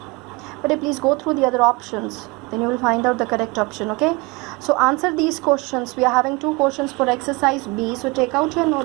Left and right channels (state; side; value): quieter; left; 25.8 dB